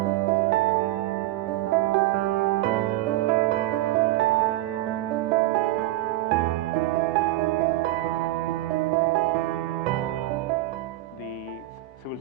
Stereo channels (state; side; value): quieter; left; 16.0 dB